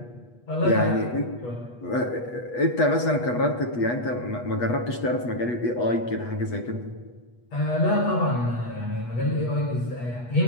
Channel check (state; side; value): late; right; 8.3 ms